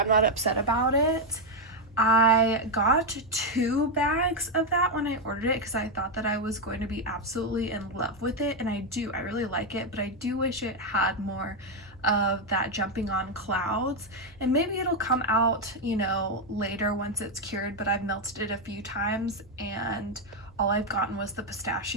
not upset about it. I got 2 bags of that when I ordered it because I thought that I was going to be absolutely in love with it, and I really like it, but I do wish it had more of that Jumping on Clouds, and maybe it'll come out, later once it's cured, but I've melted it a few times and all I've gotten was the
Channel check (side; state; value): both; normal; correlation 0.04